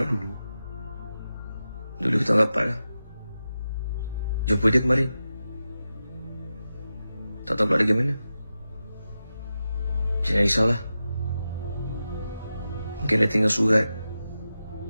dulu. Dulu kita rapat lah. Jumpa dia kemarin. Tak tahu pula dia gimana. Jangan risaulah. Mungkin dia tinggal surat.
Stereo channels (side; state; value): both; inverted; correlation -0.91